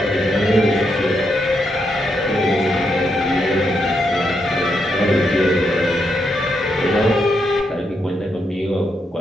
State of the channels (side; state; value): both; normal; correlation 0.80